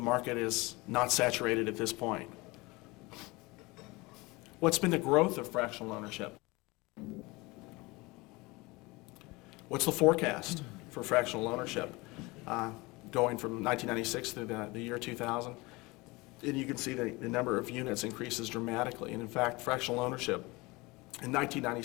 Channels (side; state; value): right; quieter; 23.7 dB